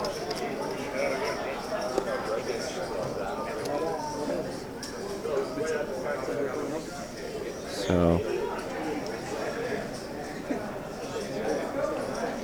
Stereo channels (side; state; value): both; identical; correlation 1.00